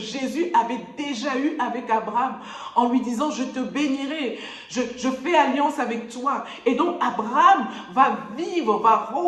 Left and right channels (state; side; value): identical; both; correlation 1.00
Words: avait déjà eue avec Abraham en lui disant, je te bénirai, je fais alliance avec toi. Et donc, Abraham va